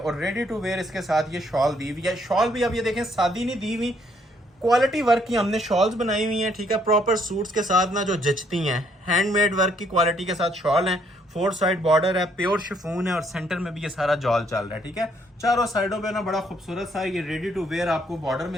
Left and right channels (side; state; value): both; normal; correlation 0.68